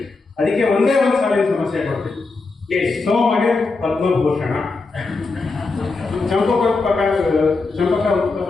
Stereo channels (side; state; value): right; quieter; 3.9 dB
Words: ಅದಕ್ಕೆ ಒಂದೇ ಒಂದು ಸಾಲಿನ ಸಮಸ್ಯೆ ಕೊಡ್ತೀನಿ. ಸೋಮಗೆ ಪದ್ಮಭೂಷಣ, ಚಂಪಕ